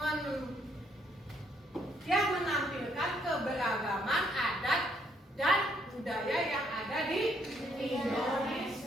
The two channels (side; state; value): both; normal; correlation 0.71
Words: yang menampilkan keberagaman adat dan budaya yang ada di